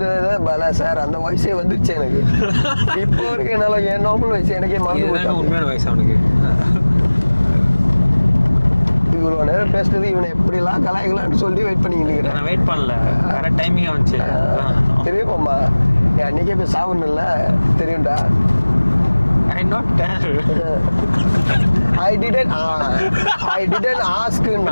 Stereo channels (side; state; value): both; inverted; correlation -1.00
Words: பல சார் அந்த வயசே வந்துருச்சு எனக்கு. இப்போ வரைக்கும் என்னால என் நார்மல் வயசு எனக்கே மறந்து போச்சு. உண்மையான வயசு அவனுக்கு. இவ்வளவு நேரம் பேசுறது இவனை எப்படிலாம் கலாய்க்கலாம்னு சொல்லி வெயிட் பண்ணிக்கிட்டு இருக்கிறேன். நான் வெயிட் பண்ணல, கரெக்ட் டைமிங்கா வந்துச்சு. தெரியுமாம்மா, அன்னைக்கே போய் சாப்பிடணும்ல, தெரியும்டா. I not tell. I didn't ask.